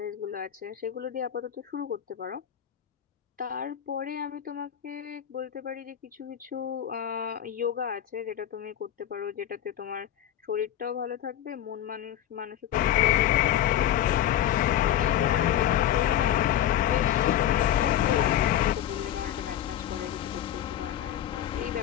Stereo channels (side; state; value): right; quieter; 11.3 dB